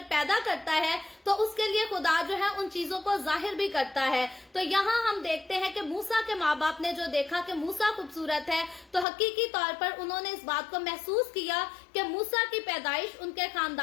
पैदा करता है तो उसके लिए खुदा जो है उन चीजों को जाहिर भी करता है। तो यहाँ हम देखते हैं कि मूसा के माँ बाप ने जो देखा कि मूसा खूबसूरत है तो हकीकी तौर पर उन्होंने इस बात को महसूस किया कि मूसा की पैदाइश उनके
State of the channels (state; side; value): drops out; right; at 9.1 s